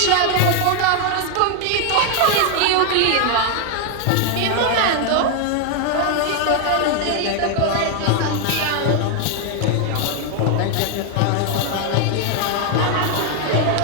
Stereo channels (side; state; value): both; different; correlation 0.00